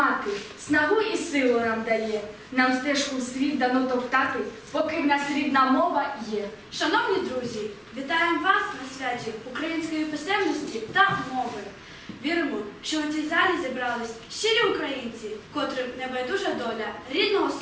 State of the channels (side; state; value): both; identical; correlation 1.00